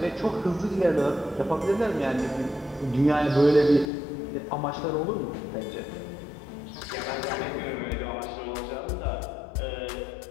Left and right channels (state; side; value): drops out; right; at 3.9 s